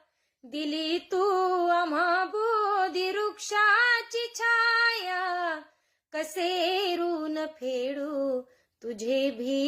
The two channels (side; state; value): both; identical; correlation 1.00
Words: दिली तू आम्हा बोधी वृक्षाची छाया, कसे ऋण फेडू तुझे